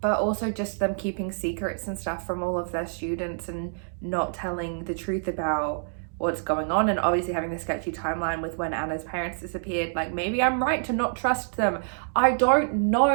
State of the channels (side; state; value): left; silent; digital silence